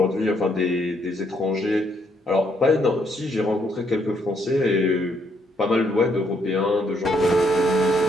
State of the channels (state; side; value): normal; both; correlation 0.72